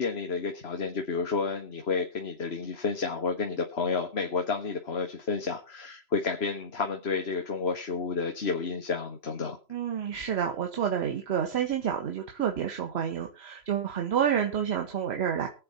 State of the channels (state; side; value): late; right; 3.0 ms